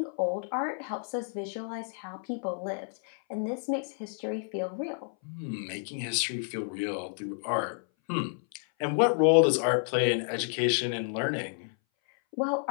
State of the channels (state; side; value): silent; right; 58 dB below the other